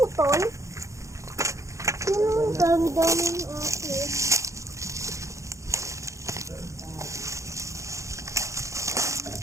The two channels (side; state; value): left; late; 0.15 ms